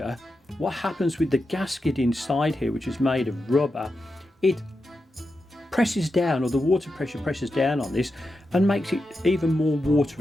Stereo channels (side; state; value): both; normal; correlation 0.89